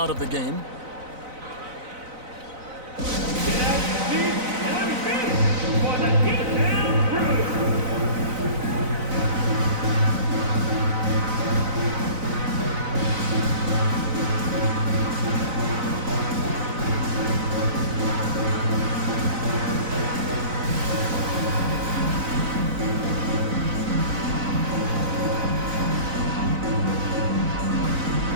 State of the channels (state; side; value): late; left; 4.0 ms